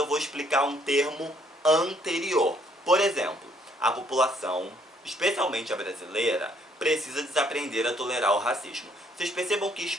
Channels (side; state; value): both; normal; correlation 0.66